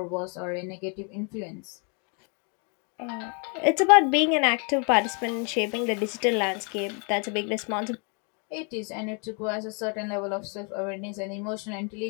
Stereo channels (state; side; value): quieter; right; 36.8 dB